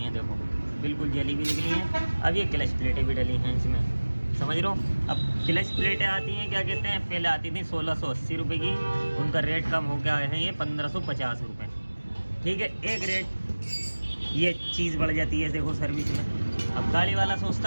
हैं, देखो बिल्कुल जली भी निकली हैं। अब ये क्लच प्लेटें भी डली हैं इसमें, समझ रहे हो। अब क्लच प्लेटें आती हैं, क्या कहते हैं, पहले आती थी 1680 रुपये की, उनका रेट कम हो गया है ये 1550 रुपये, ठीक है। एक रेट ये चीज़ बढ़ जाती है देखो सर्विस में। अब गाड़ी वाला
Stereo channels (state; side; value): inverted; both; correlation -1.00